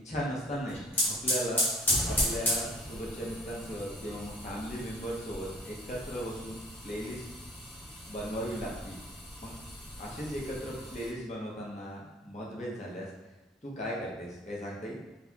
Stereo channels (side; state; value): both; normal; correlation 0.53